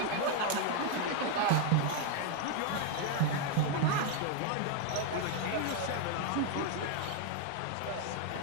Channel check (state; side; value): different; both; correlation 0.00